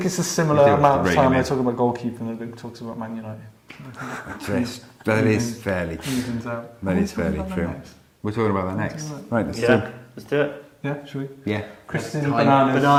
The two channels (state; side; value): identical; both; correlation 1.00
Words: it's a similar amount of time I talk about goalkeeping that Luke talks about Man United. That is fairly true. Evens out. That is fairly true. We're talking about that next. Right, let's do it. Yeah, should we? Yeah. Christian,